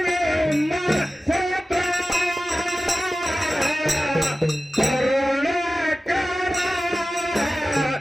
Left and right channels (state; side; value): normal; both; correlation 0.95